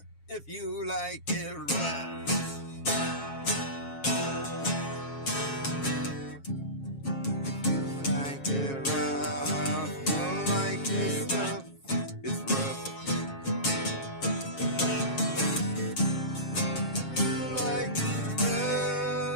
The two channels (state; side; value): late; right; 7.3 ms